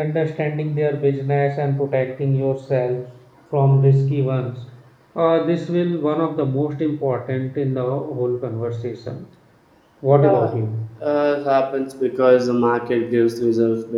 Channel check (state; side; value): identical; both; correlation 1.00